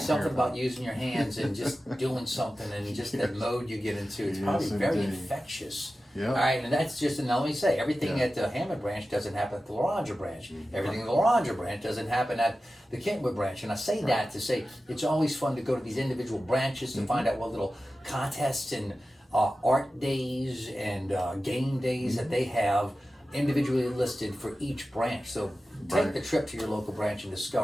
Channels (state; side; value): normal; both; correlation 0.94